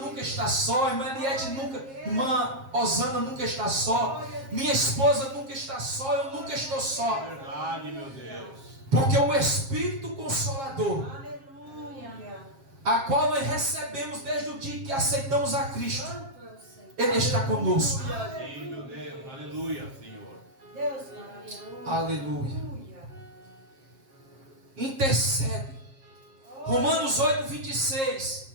está só. Irmã Eliette nunca. Irmã Osana nunca está só. Minha esposa nunca está só. Eu nunca estou só. Verdade, meu Deus. Porque o Espírito Consolador, Aleluia. a qual nós recebemos desde o dia que aceitamos a Cristo, Santo é o Senhor. Ele está conosco. Sim, meu Deus. Aleluia, Senhor. Deus maravilhoso. Aleluia. Aleluia. Intercede. Romanos 8,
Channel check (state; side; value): late; left; 7.4 ms